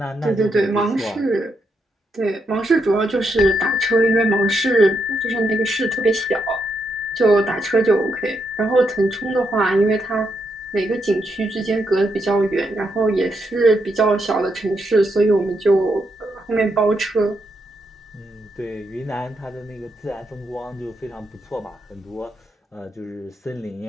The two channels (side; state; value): both; normal; correlation 0.80